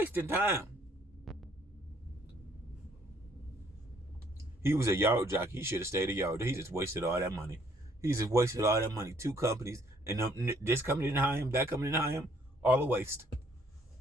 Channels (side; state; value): both; normal; correlation 0.64